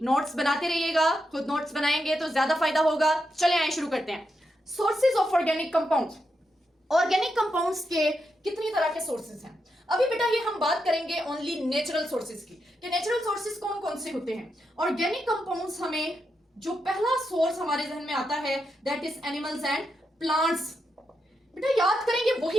नोट्स बनाते रहिएगा, खुद नोट्स बनाएंगे तो ज्यादा फायदा होगा। चले आए शुरू करते हैं। Sources of organic compounds. Organic compounds के कितनी तरह के सोर्सेज हैं? अभी बेटा ये हम बात करेंगे ओनली नेचुरल सोर्सेज की कि नेचुरल सोर्सेज कौन कौन से होते हैं। ऑर्गेनिक कंपाउंड्स हमें जो पहला सोर्स हमारे जहन में आता है that is animals and plants. बेटा याद करेंगे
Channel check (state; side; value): normal; both; correlation 0.84